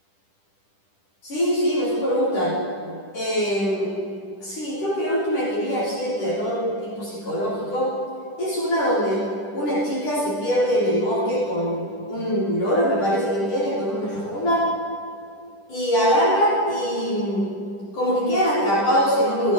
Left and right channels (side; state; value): right; late; 10 ms